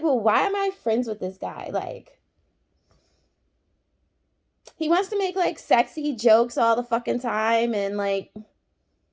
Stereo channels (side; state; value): both; identical; correlation 1.00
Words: well, why am I friends with this guy? Like, he wants to make like sexy jokes all the fucking time and like